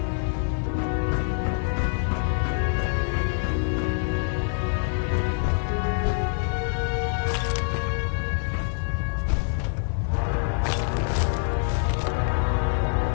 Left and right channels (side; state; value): right; silent; 61 dB below the other